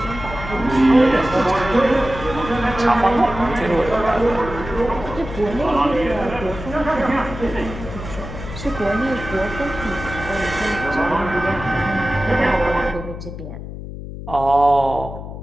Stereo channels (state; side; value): noise; left; hum, 10 dB below the sound